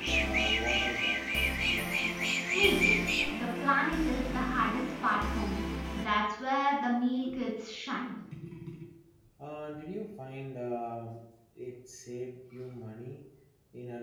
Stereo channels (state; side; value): identical; both; correlation 1.00